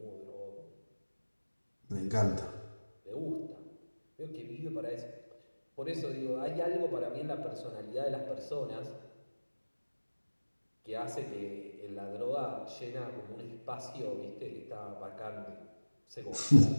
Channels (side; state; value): both; inverted; correlation -1.00